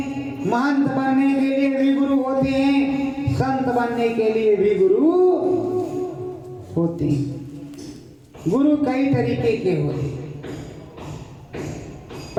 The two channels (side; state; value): both; identical; correlation 1.00